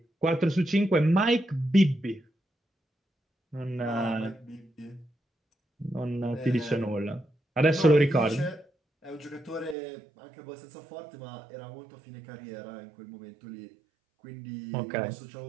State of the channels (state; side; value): drops out; left; at 9.8 s